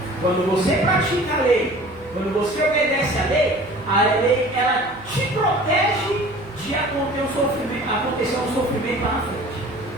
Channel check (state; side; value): noise; left; hum, 22 dB below the sound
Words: Quando você pratica a lei, quando você obedece a lei ela te protege de acontecer um sofrimento lá na frente.